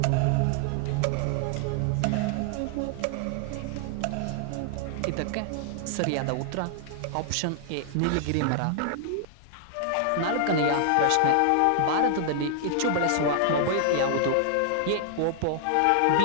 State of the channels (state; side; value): different; both; correlation -0.01